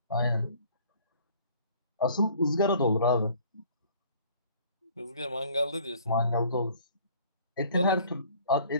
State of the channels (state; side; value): inverted; both; correlation -0.53